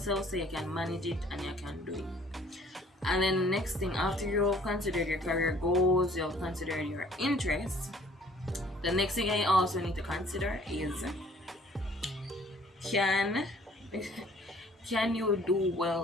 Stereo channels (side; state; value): both; normal; correlation 0.57